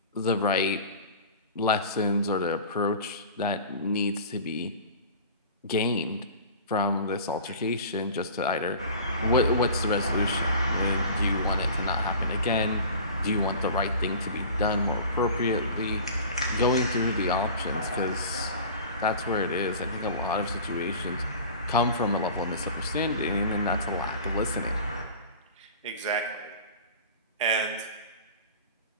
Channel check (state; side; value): inverted; both; correlation -0.39